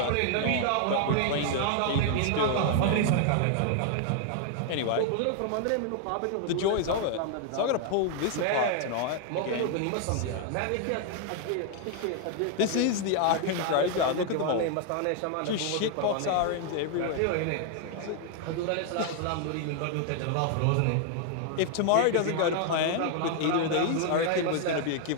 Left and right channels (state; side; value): different; both; correlation 0.00